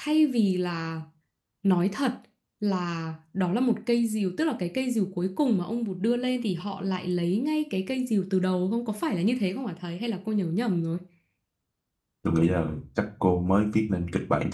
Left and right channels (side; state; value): both; identical; correlation 1.00